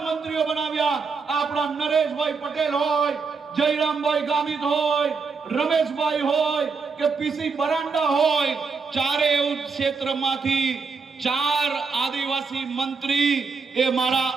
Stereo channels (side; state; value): left; quieter; 4.9 dB